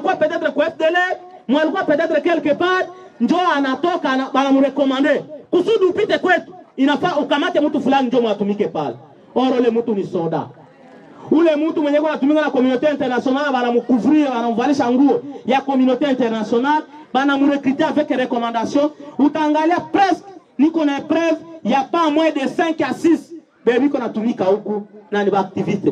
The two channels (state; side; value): identical; both; correlation 1.00